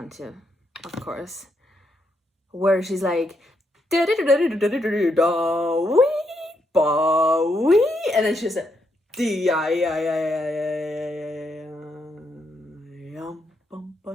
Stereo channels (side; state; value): both; normal; correlation 0.79